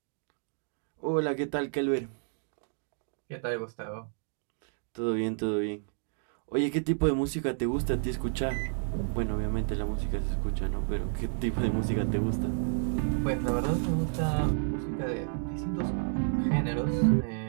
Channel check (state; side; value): silent; left; digital silence